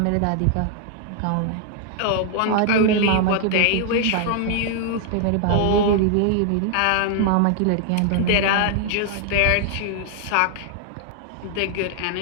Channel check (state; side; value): different; both; correlation 0.00